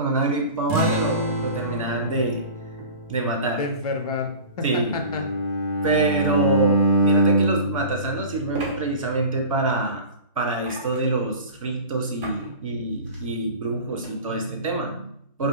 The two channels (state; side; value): inverted; both; correlation -0.37